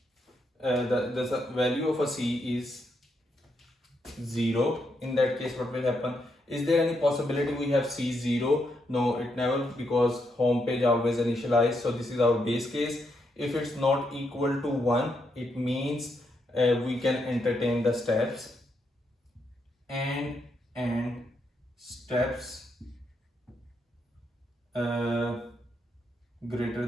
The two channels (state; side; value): normal; both; correlation 0.79